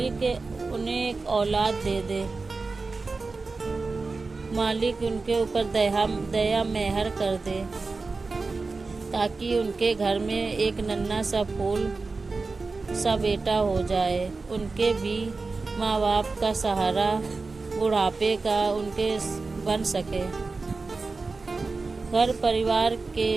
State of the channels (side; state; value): left; quieter; 3.9 dB